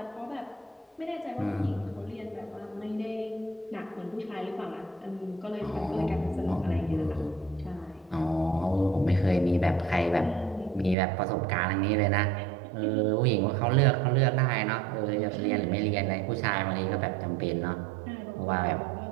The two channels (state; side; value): drops out; left; at 11.0 s